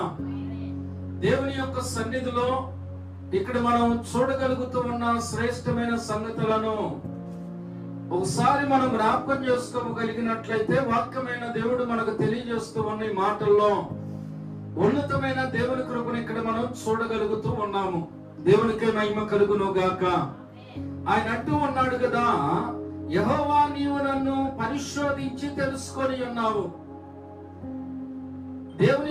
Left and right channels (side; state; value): both; identical; correlation 1.00